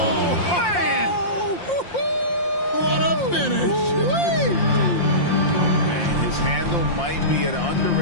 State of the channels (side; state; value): right; late; 5.7 ms